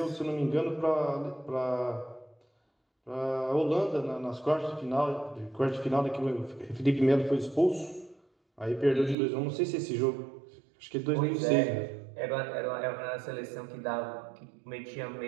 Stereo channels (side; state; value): left; drops out; at 9.2 s